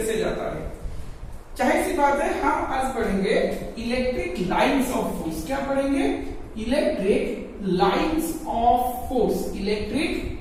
जाता है। चाहे सी बात है, हम आज पढ़ेंगे इलेक्ट्रिक लाइंस ऑफ फोर्स। क्या पढ़ेंगे? Electric lines of force. Electric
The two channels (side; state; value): both; identical; correlation 1.00